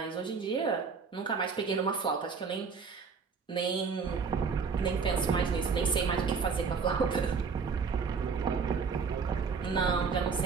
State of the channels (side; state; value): left; quieter; 5.4 dB